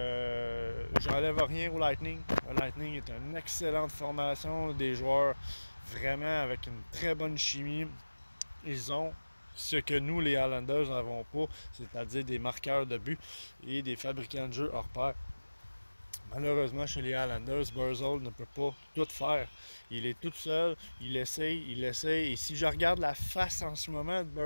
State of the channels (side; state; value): both; inverted; correlation -1.00